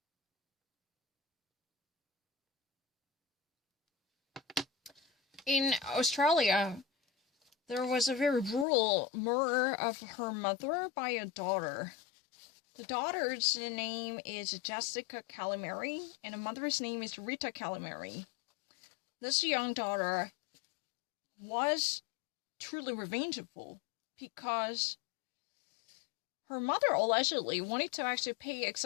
In Australia, there was a very brutal murder of her mother by a daughter. The daughter's name is Jessica Calamari, and the mother's name is Rita Calamari. This young daughter was truly revengeful because her mother allegedly wanted to actually pay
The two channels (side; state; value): right; drops out; at 8.7 s